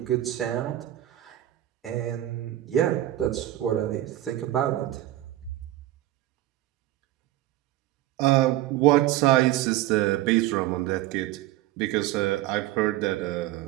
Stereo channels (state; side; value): quieter; left; 14.9 dB